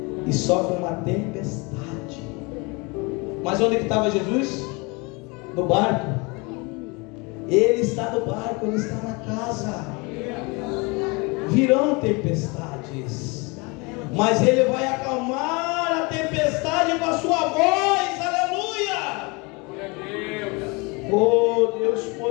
e sofre uma tempestade. Mas onde que estava Jesus? No barco. Ele está no barco, ele está na casa. Virão tempestades, mas ele vai acalmar a tempestade com a sua voz. Aleluia! Glória a Deus. Oh Deus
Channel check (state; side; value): quieter; right; 28.1 dB